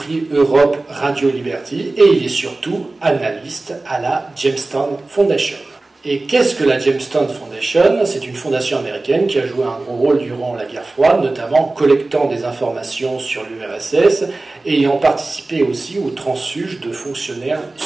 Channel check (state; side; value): quieter; left; 3.1 dB